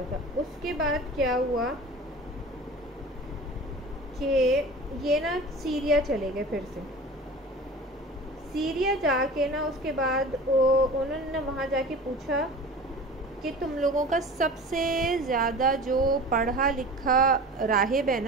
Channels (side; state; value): both; normal; correlation 0.37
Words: تھا. اس کے بعد کیا ہوا کہ یہ نا سیریا چلے گئے. پھر سے سیریا جا کے نا اس کے بعد انہوں نے وہاں جا کے پوچھا کہ تم لوگوں کا سب سے زیادہ جو پڑھا لکھا راہب ہے